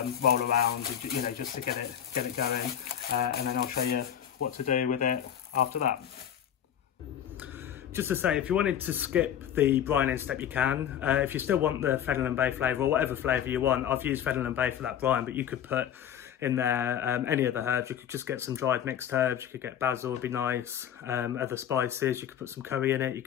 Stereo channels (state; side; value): quieter; right; 9.7 dB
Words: roll around, just to get it going, and then I'll show you what to do with it after that. Just to say, if you wanted to skip the brining step, you can. If you still want the Fennel Bay flavour, or whatever flavour you want, I've used Fennel Bay for that brine, but you could put in there any other herbs. You could just get some dried mixed herbs. You could get basil, would be nice. Other spices, you could put some curry in it. You